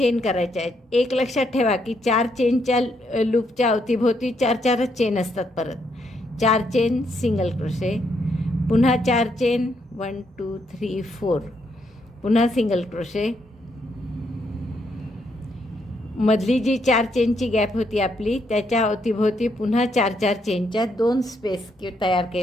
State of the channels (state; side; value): normal; both; correlation 0.76